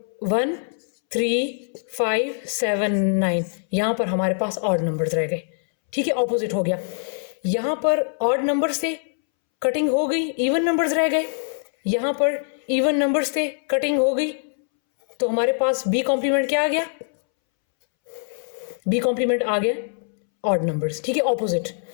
1 3 5 7 9, यहाँ पर हमारे पास ऑड नंबर्स रह गए। ठीक है, ऑपोजिट हो गया। यहाँ पर ऑड नंबर से कटिंग हो गई, इवन नंबर्स रह गए। यहाँ पर इवन नंबर्स से कटिंग हो गई, तो हमारे पास बी कॉम्प्लीमेंट क्या आ गया, बी कॉम्प्लीमेंट आ गया ऑड नंबर्स। ठीक है, ऑपोजिट।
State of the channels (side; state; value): right; silent; 63 dB below the other